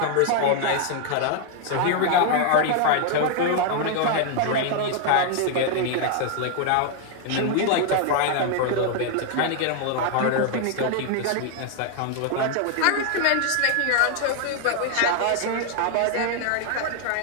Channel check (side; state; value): both; different; correlation 0.00